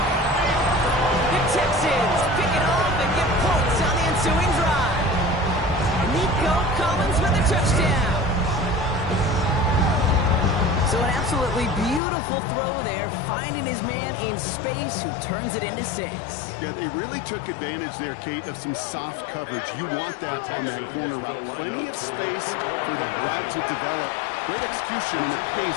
The Texans pick it off and get points on the ensuing drive. Nico Collins with a touchdown. So an absolutely beautiful throw there, finding his man in space who turns it into 6. Yeah, they really took advantage there, Kate, of some soft coverage. You want that on that corner route. Plenty of space for that route to develop. Great execution, and it pays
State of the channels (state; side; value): drops out; right; at 12.0 s